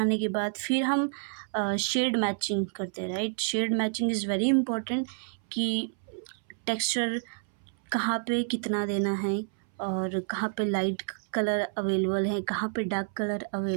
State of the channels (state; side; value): silent; left; 59 dB below the other